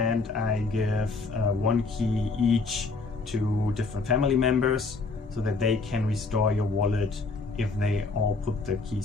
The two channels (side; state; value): right; quieter; 3.9 dB